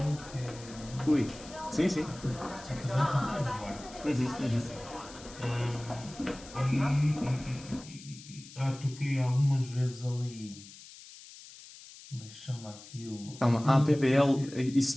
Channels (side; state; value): left; noise; hiss, 18 dB below the sound